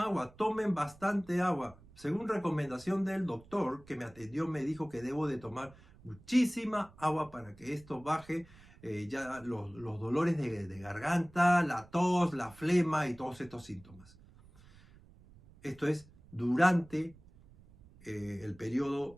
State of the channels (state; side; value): noise; right; rumble, 24 dB below the sound